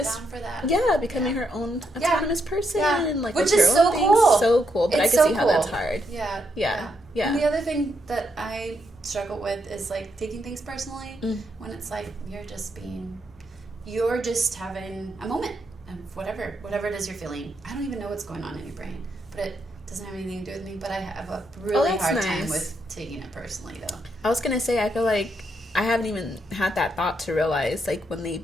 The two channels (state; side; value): normal; both; correlation 0.79